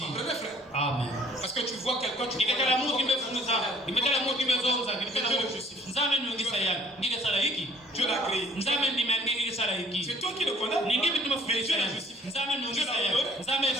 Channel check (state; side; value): normal; both; correlation 0.56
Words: Amen. Parce que tu vois quelqu'un, tu vois Dieu l'a créé. C'est toi qui le condamnes. Mais Dieu l'a justifié.